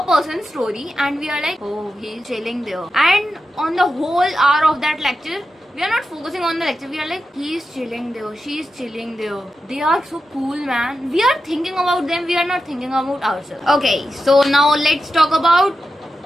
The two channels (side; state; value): both; normal; correlation 0.90